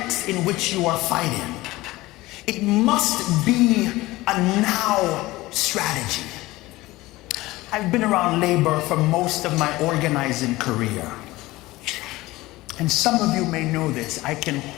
in which you are fighting. It must be a now strategy. I've been around labor for most of my organizing career. And some of you may know this. I can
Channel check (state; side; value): quieter; right; 19.1 dB